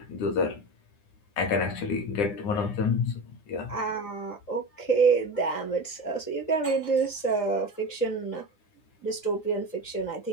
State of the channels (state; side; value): late; right; 9.8 ms